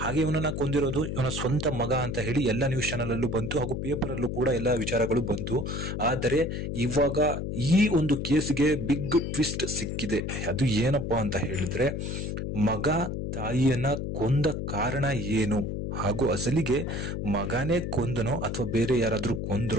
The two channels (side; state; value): left; noise; hum, 3 dB below the sound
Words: ಹಾಗೆ ಇವನನ್ನ ಕೊಂದಿರೋದು ಇವನ ಸ್ವಂತ ಮಗ ಅಂತ ಹೇಳಿ ಎಲ್ಲ ನ್ಯೂಸ್ ಚಾನಲ್ ಅಲ್ಲೂ ಬಂತು, ಹಾಗೂ ಪೇಪರ್ ಅಲ್ಲೂ ಕೂಡ ಎಲ್ಲ ವಿಚಾರಗಳು ಬಂತು. ಆದರೆ ಇವಾಗ ಈ ಒಂದು ಕೇಸ್ಗೆ ಬಿಗ್ ಟ್ವಿಸ್ಟ್ ಸಿಕ್ಕಿದೆ. ಅದು ಏನಪ್ಪಾ ಅಂತ ಹೇಳಿದ್ರೆ, ಮಗ ತಾಯಿಯನ್ನ ಕೊಂದ ಕಾರಣ ಏನು, ಹಾಗೂ ಅಸಲಿಗೆ ಮಗನೇ ಕೊಂದನೋ ಅಥವಾ ಬೇರೆ ಯಾರಾದ್ರೂ